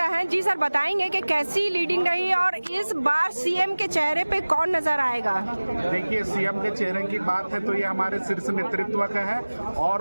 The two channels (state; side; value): inverted; both; correlation -1.00